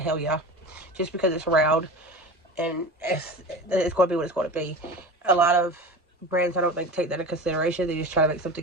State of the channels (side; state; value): both; normal; correlation 0.33